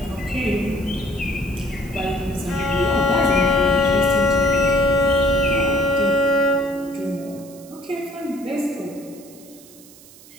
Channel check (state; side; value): noise; right; hiss, 22 dB below the sound